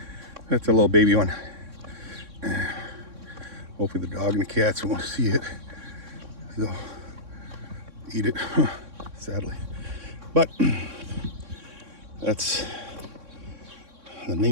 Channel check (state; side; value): late; left; 3.6 ms